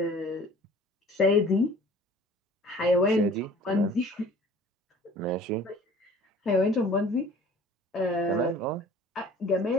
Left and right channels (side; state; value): both; normal; correlation 0.48